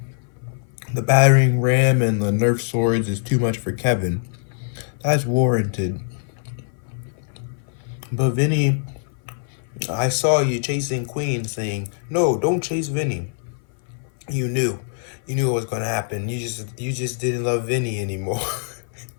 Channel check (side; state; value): right; silent; 58 dB below the other